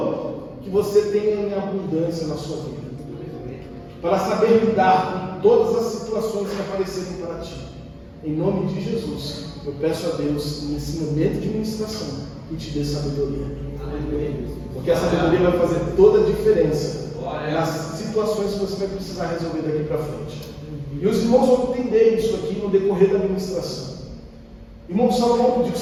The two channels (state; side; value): identical; both; correlation 1.00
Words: que você tenha em abundância na sua vida, para saber lidar com todas as situações que aparecerem para ti. Em nome de Jesus, eu peço a Deus, nesse momento de ministração, que te dê sabedoria. Porque a sabedoria vai fazer toda a diferença nas situações que você vai precisar resolver daqui para frente. E os irmãos vão entender isso aqui no decorrer da ministração. Irmão Salomão pediu